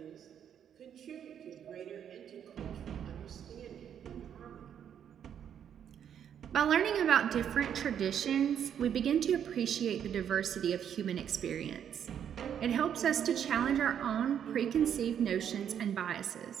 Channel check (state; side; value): quieter; left; 8.9 dB